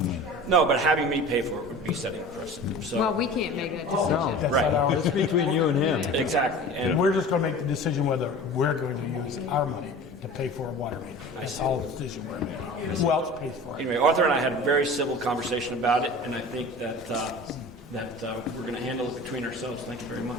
No, but having me pay for it would be setting a precedent. So, Well, we can't make that decision. No, That's Right. not our it's between you and him. exactly. And we're just going to make the decision whether we're going to use our money to to pay for a water main. That's all the decision we're making. Who else pays for it? Anyway, Arthur and I had a very civil conversation about it, and I think that we're going to handle it between ourselves. Thank you very much.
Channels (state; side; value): normal; both; correlation 0.38